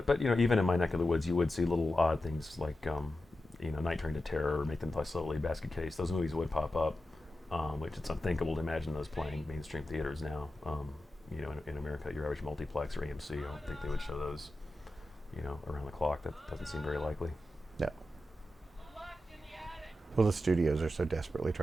even in my neck of the woods, you would see little odd things like Night Train to Terror, or Make Them Fly Slowly, Basket Case. Those movies would pop up, which it's unthinkable to imagine those playing mainstream theaters now. In America, your average multiplex or AMC, I don't think they would show those, around the clock. That doesn't seem very likely. No. Well, the studios are so desperately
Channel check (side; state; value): both; normal; correlation 0.91